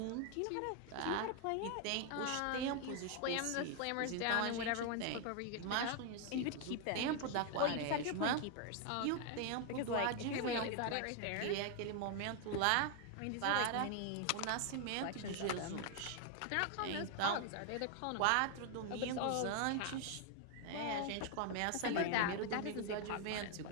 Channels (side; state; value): both; different; correlation 0.00